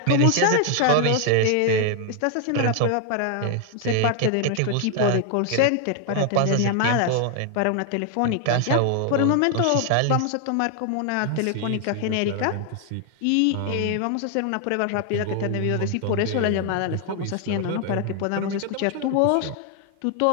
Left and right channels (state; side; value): different; both; correlation 0.00